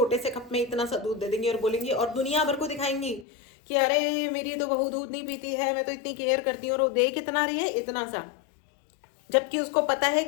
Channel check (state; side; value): drops out; right; at 3.2 s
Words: से कप में इतना सा दूध दे देंगी और बोलेंगी और दुनिया भर को दिखाएंगी कि अरे मेरी तो बहू दूध नहीं पीती है, मैं तो इतनी केयर करती हूँ, और वो दे कितना रही है, इतना सा। जबकि उसको पता है